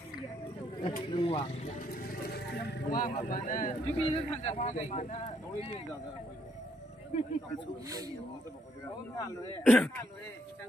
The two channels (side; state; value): both; normal; correlation 0.72